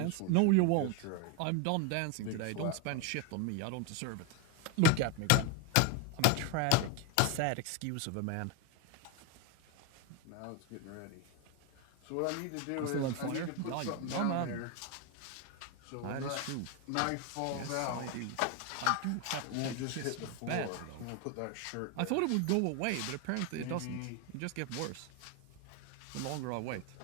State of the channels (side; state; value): both; different; correlation 0.02